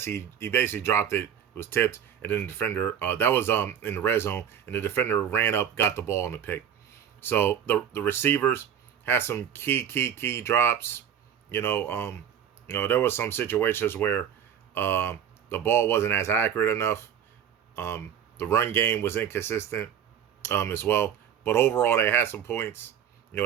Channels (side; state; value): left; quieter; 8.9 dB